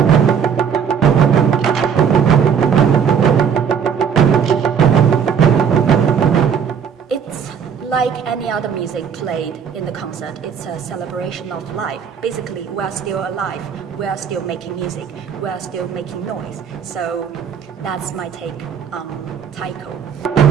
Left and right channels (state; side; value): quieter; left; 7.4 dB